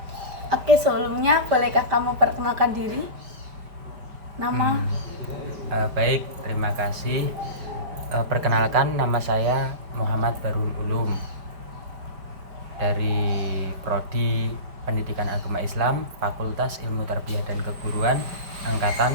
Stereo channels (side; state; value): left; late; 5.0 ms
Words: Oke, sebelumnya bolehkah kamu perkenalkan diri? Nama? Baik, terima kasih. Perkenalkan, nama saya Muhammad Barul Ulum dari Prodi Pendidikan Agama Islam, Fakultas Ilmu Tarbiyah dan Keguruan, Angkatan